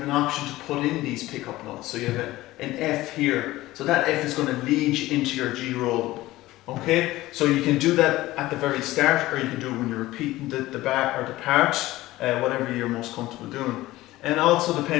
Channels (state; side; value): quieter; right; 17.3 dB